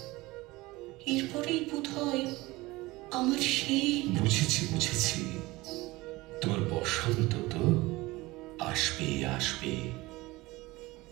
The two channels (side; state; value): left; quieter; 20.7 dB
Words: এরপরেই বোধ হয় আমার সেই বুঝেছি বুঝেছি, তোমার বসন্ত তো আসবে আসবে।